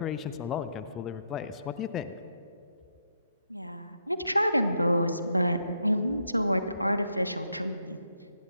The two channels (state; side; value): inverted; both; correlation -0.78